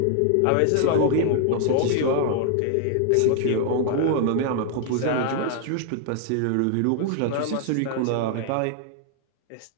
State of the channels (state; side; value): different; both; correlation 0.00